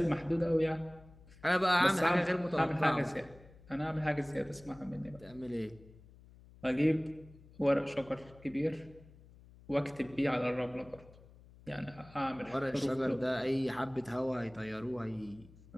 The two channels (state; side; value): noise; left; hum, 22 dB below the sound